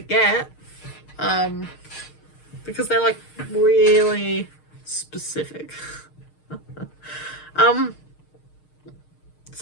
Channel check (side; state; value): right; late; 6.5 ms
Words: because they're like really specific.